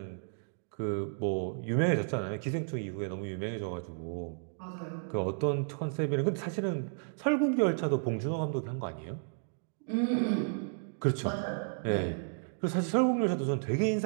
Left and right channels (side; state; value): left; silent; digital silence